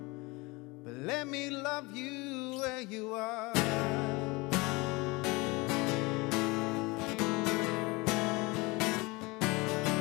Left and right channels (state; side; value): quieter; right; 24.8 dB